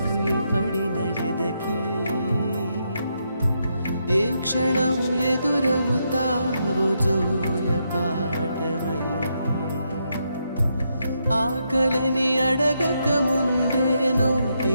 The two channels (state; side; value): inverted; both; correlation -0.80